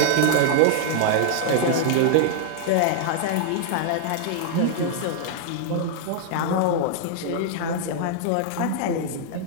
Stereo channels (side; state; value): both; different; correlation -0.01